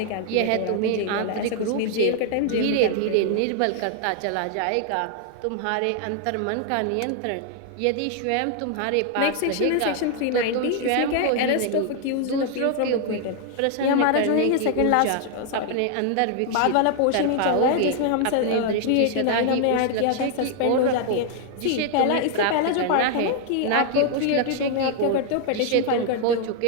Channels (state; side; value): different; both; correlation 0.00